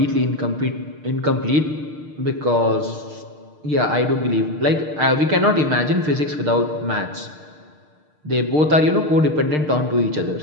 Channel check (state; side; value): late; left; 6.6 ms